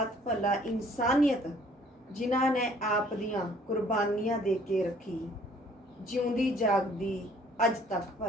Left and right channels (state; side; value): normal; both; correlation 0.58